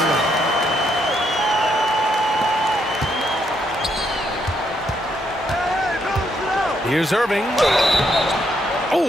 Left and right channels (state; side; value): normal; both; correlation 0.75